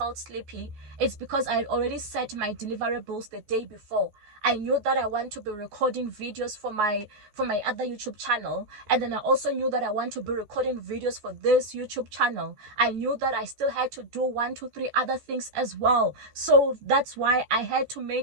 sleepy, it's because I had already set my deliverables the day before. I knew that I want to be recording videos for my other YouTube channel, and then I also knew that I want to be recording videos for this YouTube channel. I knew that I still had to do 1, 2, 3 other things as well. So that's why I had to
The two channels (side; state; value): left; late; 14 ms